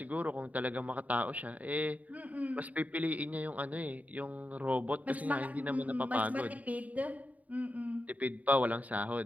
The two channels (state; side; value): late; left; 0.072 ms